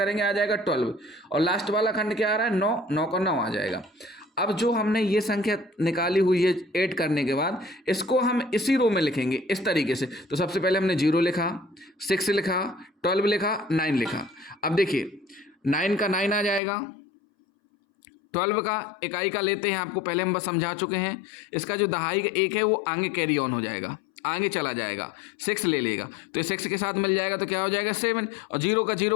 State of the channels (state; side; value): drops out; right; at 16.6 s